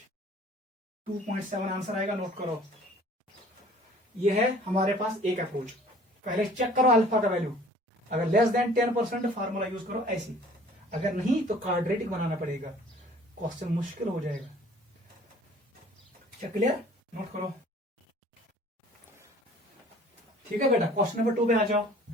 2.7 आंसर आएगा, नोट करो। ये है हमारे पास एक अप्रोच। पहले चेक करो अल्फा का वैल्यू, अगर लेस देन 10% फार्मूला यूज करो ऐसी, अगर नहीं तो क्वाड्रेटिक बनाना पड़ेगा, क्वेश्चन मुश्किल हो जाएगा। क्या क्लियर, नोट करो। ठीक है बेटा, क्वेश्चन नंबर 2 पे आ जाओ।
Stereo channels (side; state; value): both; normal; correlation 0.51